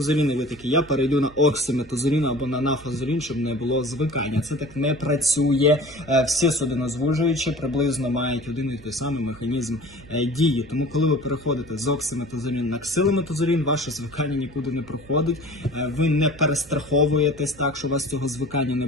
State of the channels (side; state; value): right; noise; hum, 22 dB below the sound